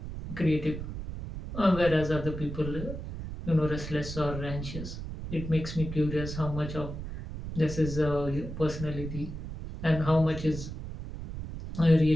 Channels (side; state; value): right; noise; rumble, 8 dB below the sound